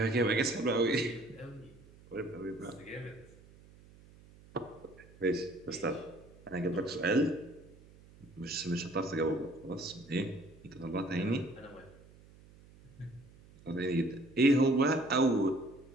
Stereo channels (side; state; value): right; noise; hum, 23 dB below the sound